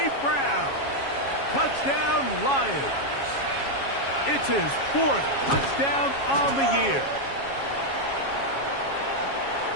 Brown. Touchdown, Lions. It's his 4th touchdown on the year.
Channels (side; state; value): right; late; 7.3 ms